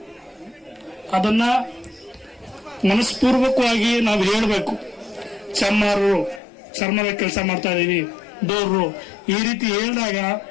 ಅದನ್ನ ಮನಸ್ಪೂರ್ವಕವಾಗಿ ನಾವು ಹೇಳಬೇಕು. ಚಮ್ಮಾರರು ಚರ್ಮದ ಕೆಲಸ ಮಾಡ್ತಾ ಇದೀವಿ, ಡೋರ್ರು ಈ ರೀತಿ ಹೇಳಿದಾಗ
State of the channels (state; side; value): drops out; right; at 6.4 s